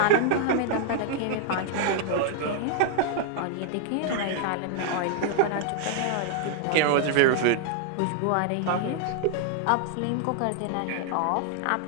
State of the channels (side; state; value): both; different; correlation 0.00